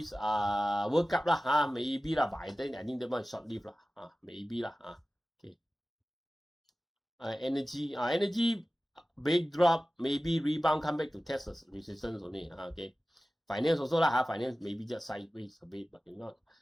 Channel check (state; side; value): normal; both; correlation 0.96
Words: World Cup lah. Maybe lah, but I think that one short lived lah. Maybe lah. Okay. Energy big drop, maybe rebound, come back to test the resistance only. Okay. Finance also lah. Finance maybe just sideways a bit, but it's not